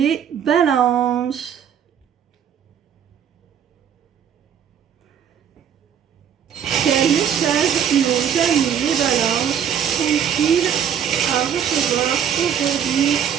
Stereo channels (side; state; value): left; quieter; 8.4 dB